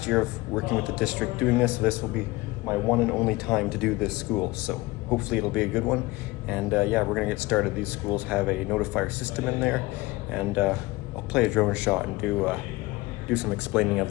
year of working with the district doing this, so this will be my one and only time to do this school. So hopefully it'll be a good one. And yeah, we're gonna get started. These schools have a notifier system in there, and I'll play a drone shot and do some explaining of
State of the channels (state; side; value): quieter; right; 20.8 dB